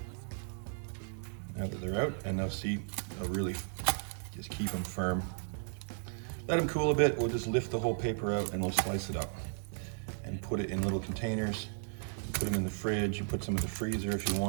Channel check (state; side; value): silent; left; digital silence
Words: now that they're out, and they'll see, they'll really just keep them firm. Let them cool a bit, we'll just lift the whole paper out and we'll slice it up and put it in little containers. Put them in the fridge, you put some in the freezer if you